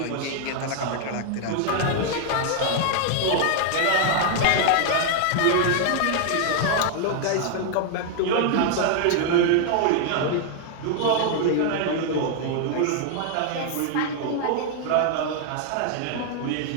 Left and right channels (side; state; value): both; different; correlation 0.00